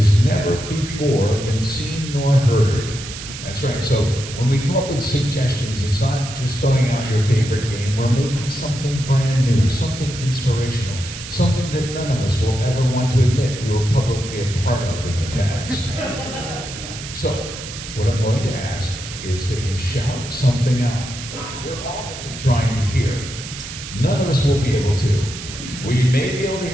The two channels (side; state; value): right; noise; hiss, 11 dB below the sound